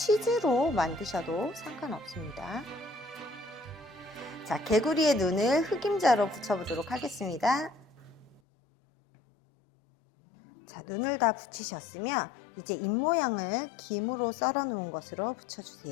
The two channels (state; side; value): drops out; right; at 8.4 s